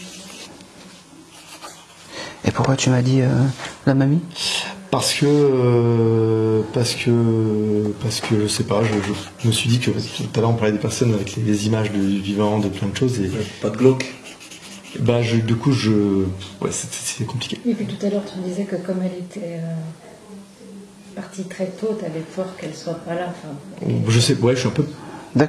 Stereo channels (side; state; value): both; identical; correlation 1.00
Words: Et pourquoi tu m'as dit la mamie? Parce que je sais pas, je me suis dit que tout à l'heure on parlait des personnes avec les images du vivant, de plein de choses et Pas de glauque. bah du coup ouais c'est compliqué. Et puis tout à l'heure tu disais que comme elle était partie très tôt, tu avais peur qu'elle soit pas là. Enfin, Je sais, ouais, je suis un peu.